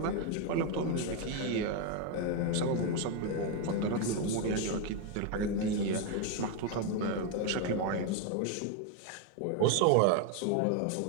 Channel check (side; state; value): both; different; correlation 0.01